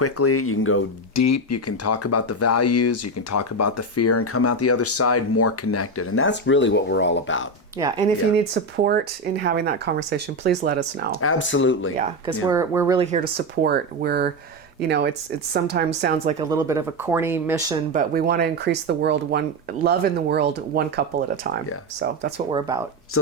You can go deep. You can talk about the values. You can talk about the fear, and come out the other side more connected. And that's really what we're all about. Yeah, and if you Yeah. need support in having that conversation, please let us know. Absolutely. Yeah, because we're really here to support. We're, you know, it's sometimes sounds like a little bit of a corny mission, but we want to increase the world love in the world one couple at a time. Yeah. So that's what we're about. So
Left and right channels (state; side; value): normal; both; correlation 0.13